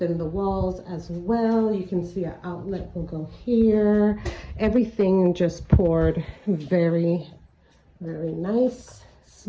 the walls as well. You can see our outlet will go here. Everything just poured very, very nice,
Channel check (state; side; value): identical; both; correlation 1.00